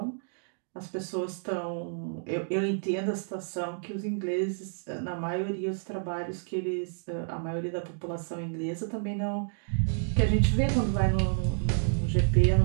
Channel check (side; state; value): left; silent; digital silence